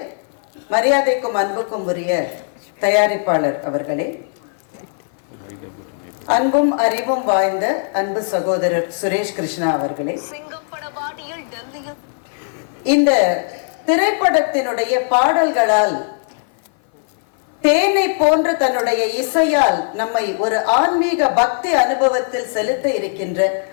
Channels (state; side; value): silent; right; 56 dB below the other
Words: மரியாதைக்கும் அன்புக்கும் உரிய தயாரிப்பாளர் அவர்களே, அன்பும் அறிவும் வாய்ந்த அன்பு சகோதரர் சுரேஷ் கிருஷ்ணா அவர்களே, இந்த திரைப்படத்தினுடைய பாடல்களால் தேனை போன்ற தன்னுடைய இசையால் நம்மை ஒரு ஆன்மீக பக்தி அனுபவத்தில் செலுத்த இருக்கின்ற